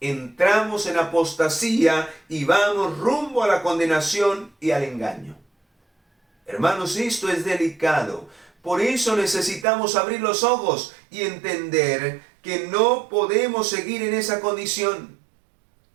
entramos en apostasía y vamos rumbo a la condenación y al engaño. Hermanos, esto es delicado. Por eso necesitamos abrir los ojos y entender que no podemos seguir en esa condición.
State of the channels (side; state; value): left; drops out; at 9.7 s